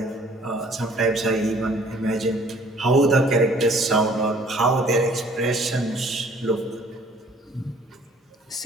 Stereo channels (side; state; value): both; normal; correlation 0.56